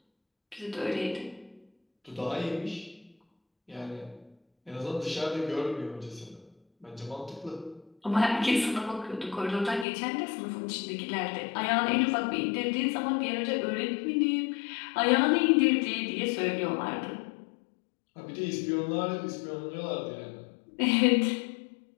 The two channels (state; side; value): drops out; right; at 9.9 s